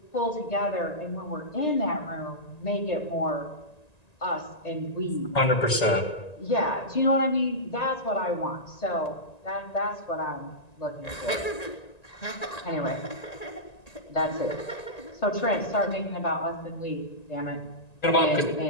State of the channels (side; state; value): right; late; 1.9 ms